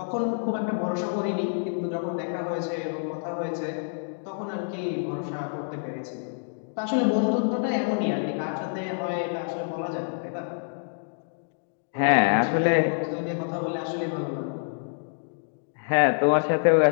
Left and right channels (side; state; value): right; silent; digital silence